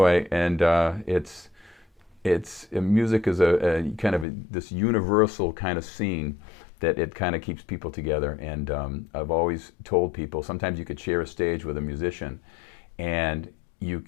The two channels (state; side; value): drops out; right; at 4.2 s